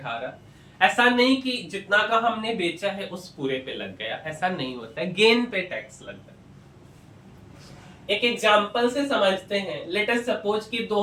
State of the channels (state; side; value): identical; both; correlation 1.00